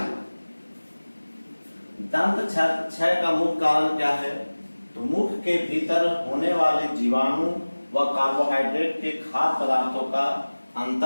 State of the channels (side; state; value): both; inverted; correlation -1.00